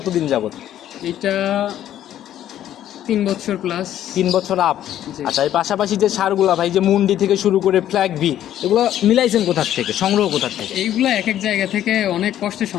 যাবত? এটা 3 বছর প্লাস। 3 বছর আপ। জি। আচ্ছা, এর পাশাপাশি যে সারগুলা ভাই, যে মুন্ডি থেকে শুরু করে ফ্ল্যাগ বি, এগুলো মিলাইছেন কোথা থেকে, সংগ্রহ কোথা থেকে? এইগুলা এক এক জায়গা থেকে অনেক কষ্টে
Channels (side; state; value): right; quieter; 11.6 dB